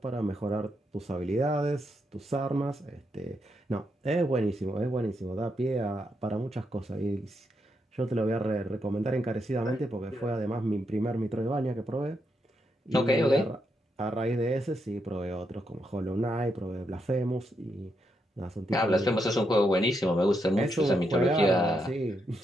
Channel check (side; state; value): both; normal; correlation 0.81